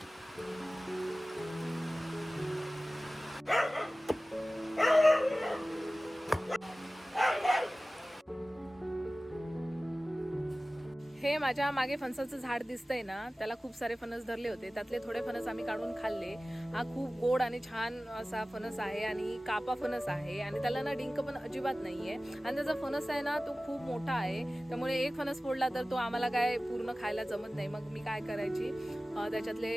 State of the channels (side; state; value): both; normal; correlation 0.97